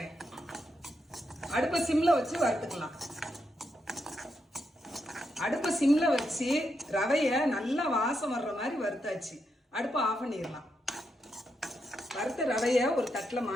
அடுப்பை சிம்ல வச்சு வறுத்துக்கலாம். அடுப்பை சிம்ல வச்சு ரவைய நல்லா வாசம் வர்ற மாதிரி வறுத்தாச்சு. அடுப்பை ஆஃப் பண்ணிடலாம். வறுத்த ரவைய ஒரு தட்டில்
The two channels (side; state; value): both; normal; correlation 0.83